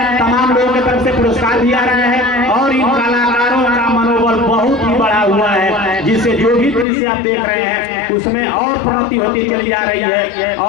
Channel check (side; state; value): right; drops out; at 6.9 s